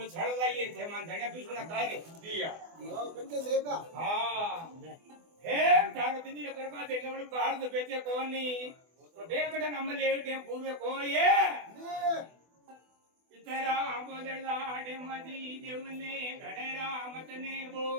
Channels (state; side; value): late; left; 24 ms